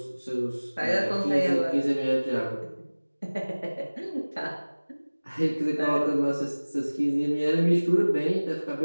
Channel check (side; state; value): both; inverted; correlation -1.00